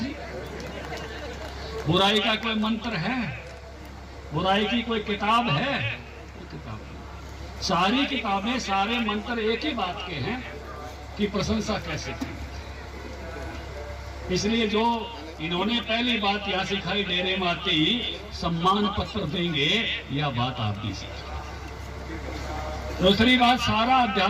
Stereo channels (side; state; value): both; identical; correlation 1.00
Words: ले। बुराई का कोई मंत्र है? बुराई की कोई किताब है? कोई किताब नहीं। सारी किताबें, सारे मंत्र एक ही बात के हैं कि प्रशंसा कैसे की। इसलिए जो इन्होंने पहली बात यह सिखाई, डेरे में आते ही सम्मान पत्र देंगे, यह बात आप भी सीखी। दूसरी बात, सारा